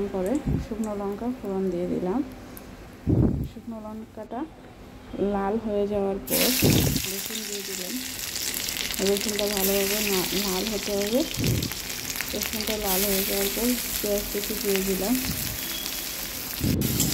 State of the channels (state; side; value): identical; both; correlation 1.00